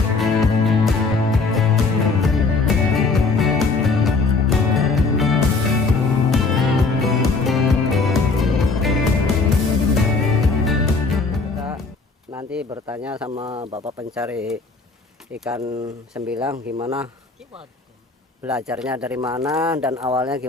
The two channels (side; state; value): right; quieter; 4.0 dB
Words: Nanti bertanya sama bapak pencari ikan sembilang gimana belajarnya, dari mana dan awalnya